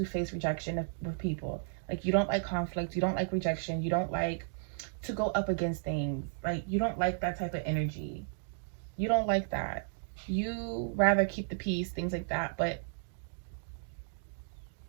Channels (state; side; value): silent; left; digital silence